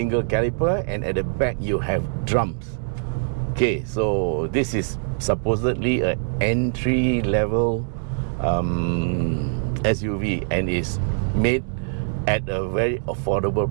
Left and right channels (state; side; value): silent; left; digital silence